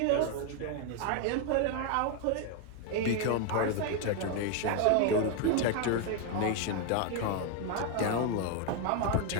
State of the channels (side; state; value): both; different; correlation 0.01